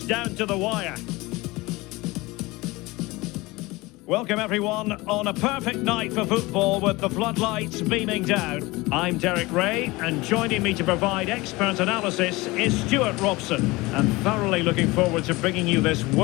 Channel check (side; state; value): right; quieter; 21.9 dB